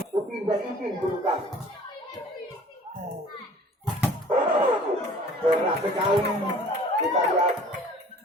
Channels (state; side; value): normal; both; correlation 0.50